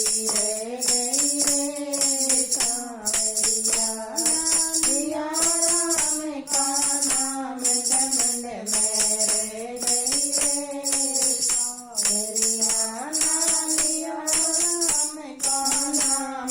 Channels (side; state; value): both; identical; correlation 1.00